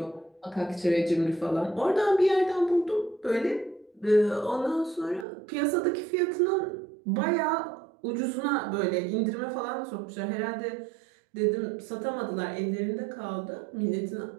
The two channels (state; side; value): drops out; left; at 5.2 s